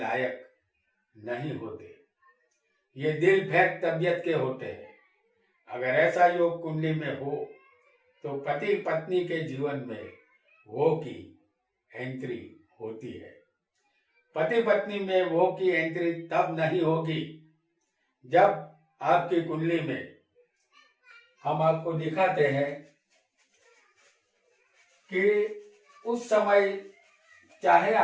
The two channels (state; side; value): identical; both; correlation 1.00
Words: नहीं होते। ये दिल फेंक तबियत के होते हैं। अगर ऐसा योग कुंडली में हो तो पति पत्नी के जीवन में वो की एंट्री होती है। पति पत्नी में वो की एंट्री तब नहीं होगी जब आपकी कुंडली में, हम आपको दिखाते हैं कि उस समय चाहे